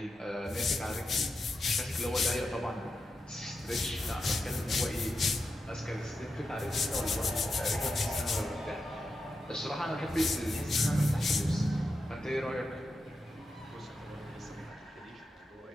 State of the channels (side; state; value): both; normal; correlation 0.88